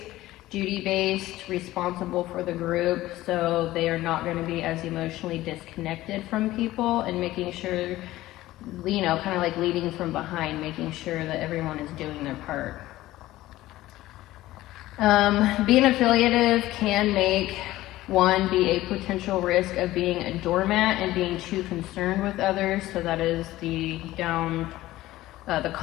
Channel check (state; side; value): quieter; right; 16.3 dB